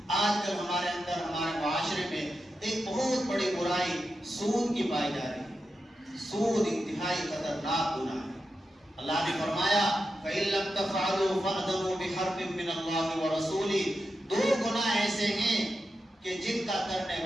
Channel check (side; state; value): both; normal; correlation 0.89